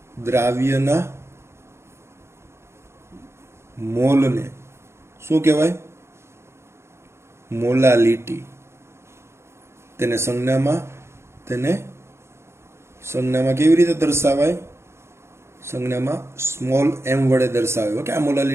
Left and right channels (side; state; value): left; late; 0.13 ms